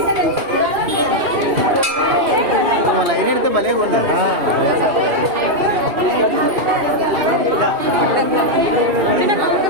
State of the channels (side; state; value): left; late; 2.7 ms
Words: లైన్ ఎడితే భలే ఉంది.